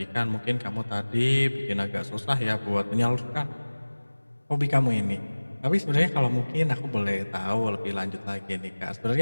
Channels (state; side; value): inverted; both; correlation -1.00